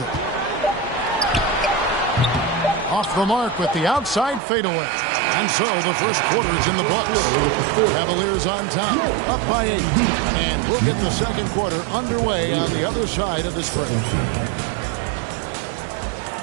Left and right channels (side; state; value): left; drops out; at 4.4 s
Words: Off the mark with the outside fadeaway. And so the first quarter is in the books. Cavaliers on top, up by 8. And we'll get the second quarter underway on the other side of this break.